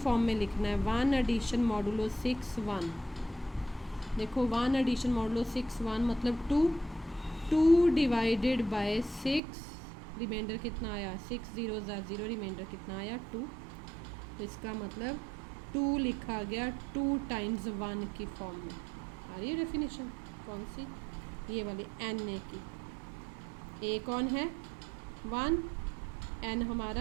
में लिखना है, 1 एडिशन मॉडुलो 6 1। देखो 1 एडिशन मॉडुलो 6 1 मतलब 2 डिवाइडेड बाय 6, रिमाइंडर कितना आया, 6 0 0, रिमाइंडर कितना आया 2, तो इसका मतलब 2 लिखा गया 2 टाइम्स 1 की फॉर्म में। आ रही है डेफिनेशन कौन सी, ये वाली एन ए की। ए कौन है, 1, एन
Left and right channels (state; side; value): drops out; left; at 9.4 s